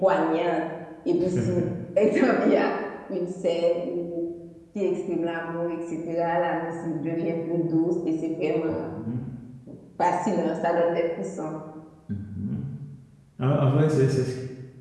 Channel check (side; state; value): both; identical; correlation 1.00